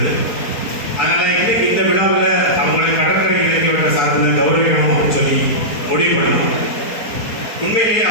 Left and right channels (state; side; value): late; right; 4.3 ms